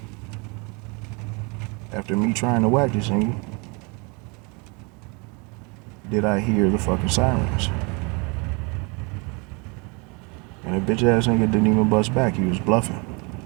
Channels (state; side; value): quieter; left; 30.9 dB